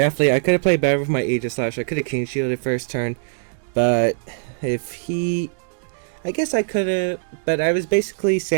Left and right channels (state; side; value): silent; left; digital silence